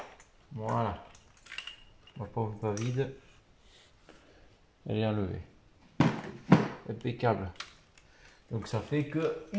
Voilà. Ma pompe pas vide. Elle est enlevée. Impeccable. Donc ça fait que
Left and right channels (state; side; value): identical; both; correlation 1.00